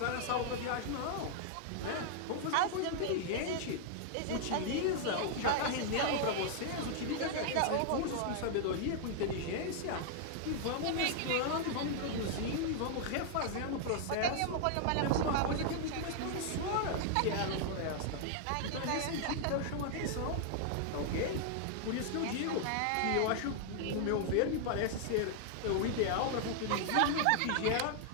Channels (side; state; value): both; different; correlation 0.00